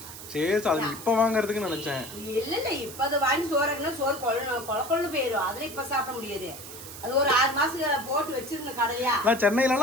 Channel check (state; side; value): noise; right; hiss, 13 dB below the sound